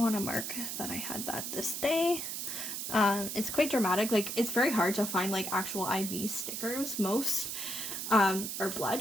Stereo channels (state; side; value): noise; right; hiss, 4 dB below the sound